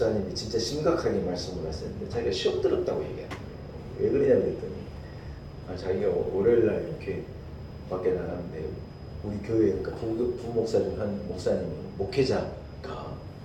진짜 심각하게 말씀을 하셨는데, 자기가 시험 들었다고 얘기해요. 왜 그러냐 그랬더니, 자기가 월요일날 이렇게 밖에 나가는데 우리 교회, 그러니까 부목사님 한 목사님이, 목회자가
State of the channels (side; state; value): both; identical; correlation 1.00